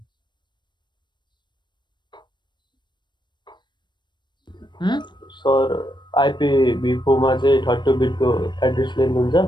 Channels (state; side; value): late; right; 0.22 ms